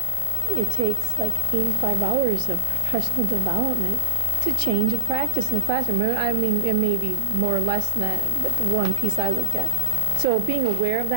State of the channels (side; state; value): right; late; 1.5 ms